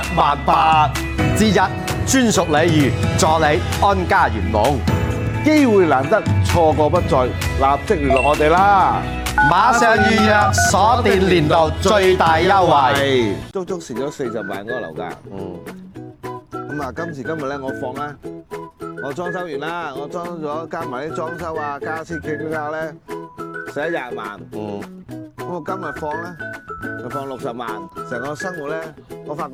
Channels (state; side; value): identical; both; correlation 1.00